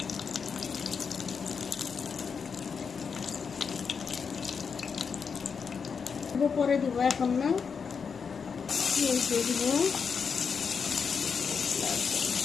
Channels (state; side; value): quieter; right; 6.0 dB